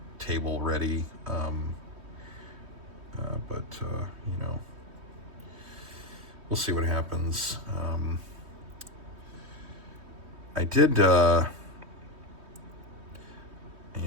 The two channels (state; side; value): late; left; 3.2 ms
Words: table ready. But we'll see what happens. I did. Yeah,